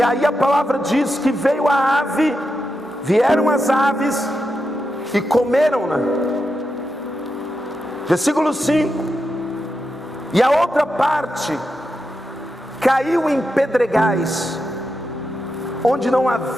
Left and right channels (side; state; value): both; normal; correlation 0.87